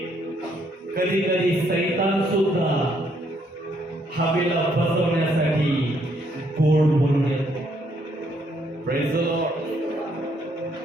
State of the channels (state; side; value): normal; both; correlation 0.71